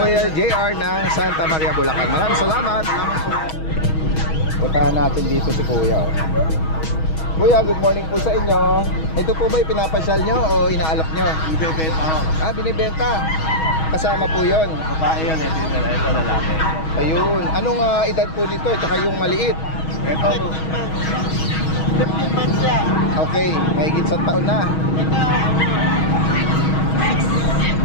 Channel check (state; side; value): late; right; 6.3 ms